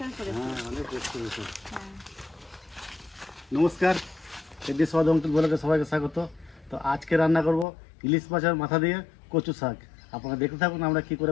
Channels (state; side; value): drops out; right; at 7.7 s